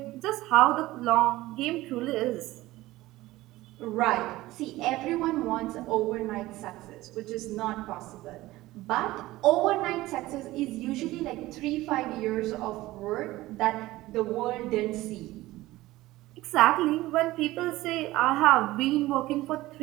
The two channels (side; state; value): left; quieter; 17.7 dB